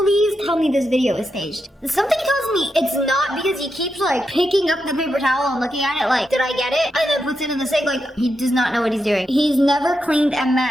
tell me this video is staged. Something tells me it's not because he keeps like picking up the paper towel and looking at it like, did I get it? And then puts it in the sink like he does not know what he's doing. He's never cleaned a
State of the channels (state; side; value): normal; both; correlation 0.86